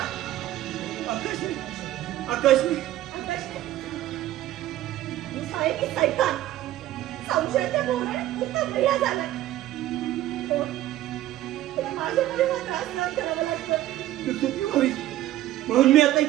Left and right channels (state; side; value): quieter; left; 14.2 dB